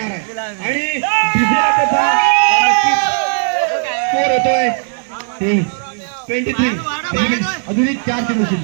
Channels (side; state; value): left; silent; 64 dB below the other